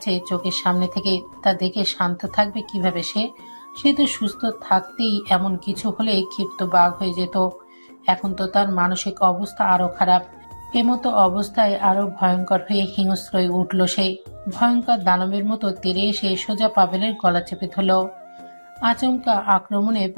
চোখের সামনে থেকে। তা দেখে শান্ত থাকবে কিভাবে সে? সে তো সুস্থ থাকতেই এমন কিছু হলে ক্ষিপ্ত বাঘ হয়ে যেত। এখন তো তার মানসিক অবস্থা আরো খারাপ। এমতো অবস্থায় আরো ভয়ঙ্কর হয়ে হিংস্র হয়ে উঠল সে। ভয়ঙ্কর দানবের মতো তেড়ে এসে সোজা পাভেলের গলা চেপে ধরল। আচমকা আক্রমণে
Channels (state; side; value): inverted; both; correlation -1.00